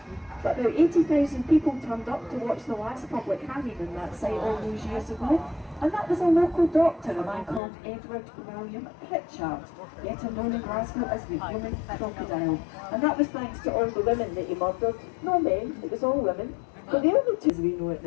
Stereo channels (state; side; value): drops out; right; at 7.6 s